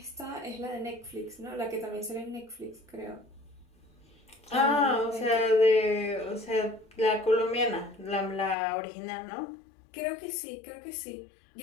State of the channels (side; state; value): right; drops out; at 8.6 s